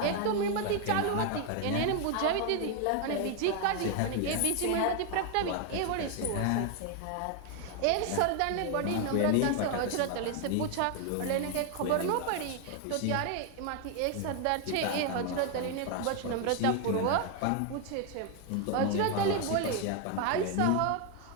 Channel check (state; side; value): different; both; correlation 0.01